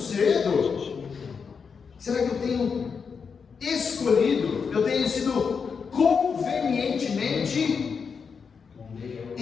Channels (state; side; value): quieter; right; 5.9 dB